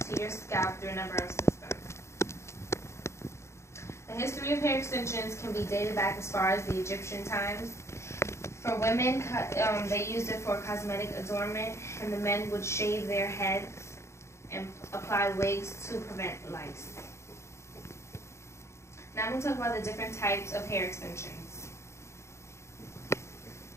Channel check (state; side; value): late; right; 0.13 ms